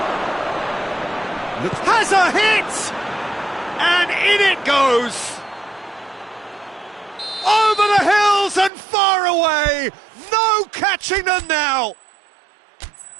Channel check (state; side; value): drops out; left; at 8.7 s